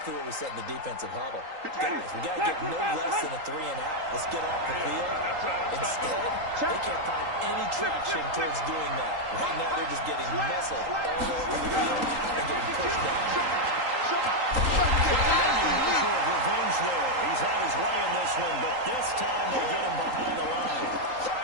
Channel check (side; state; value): left; late; 3.8 ms